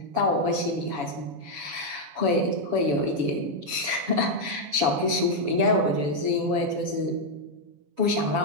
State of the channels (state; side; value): late; left; 7.1 ms